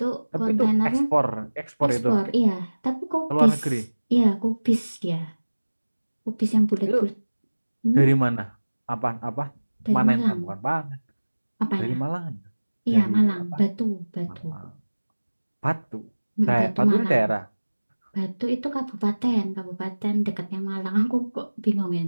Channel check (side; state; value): both; inverted; correlation -1.00